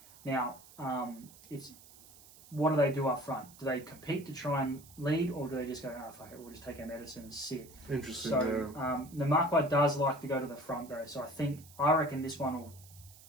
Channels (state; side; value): noise; right; hiss, 22 dB below the sound